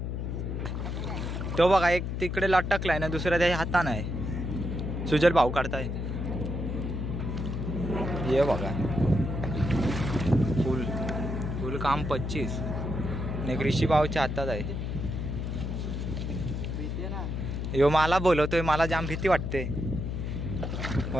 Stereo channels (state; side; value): noise; left; hum, 3 dB below the sound